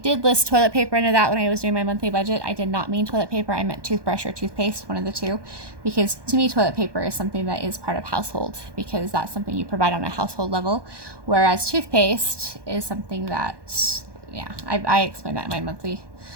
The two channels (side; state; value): left; late; 1.2 ms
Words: list toilet paper under that when I was doing my monthly budget. I did not mean toilet paper. I meant toothbrush or toothpaste, one of the two, because to me toilet paper is something that is part of household, because that's something you provide on a household level, whereas toothpaste is something that, yeah, I explained that in my monthly